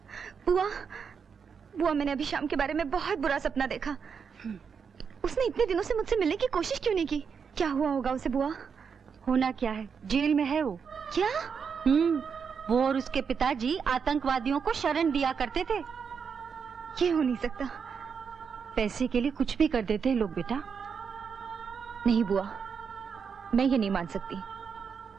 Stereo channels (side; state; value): left; quieter; 6.3 dB